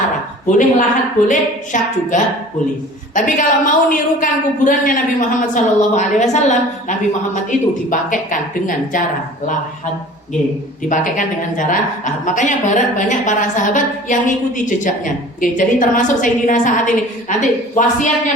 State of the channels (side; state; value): both; normal; correlation 0.44